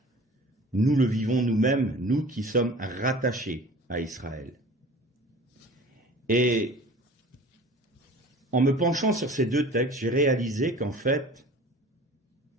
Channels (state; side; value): normal; both; correlation 0.43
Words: nous le vivons nous-mêmes, nous qui sommes rattachés à Israël. Et en me penchant sur ces deux textes, j'ai réalisé qu'en fait,